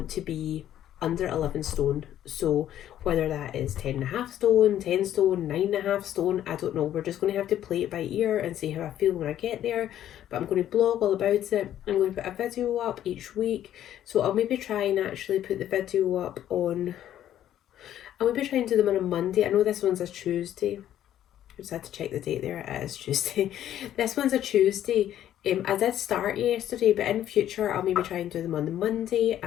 to be under 11 stone. So whether that is 10.5 stone, 10 stone, 9.5 stone, I don't know. We're just going to have to play it by ear and see how I feel when I get there. But I'm going to blog all about it. I'm going to put a video up each week. So I'll maybe try and actually put the video up on, I'll maybe try and do them on a Monday. I know this one's a Tuesday. I just had to check the date there. It is Tuesday. This one's a Tuesday. I did start yesterday, but in future I'll maybe try and do them on the Monday,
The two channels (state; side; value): quieter; right; 11.5 dB